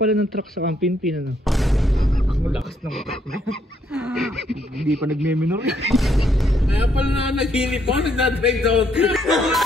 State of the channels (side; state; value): both; normal; correlation 0.72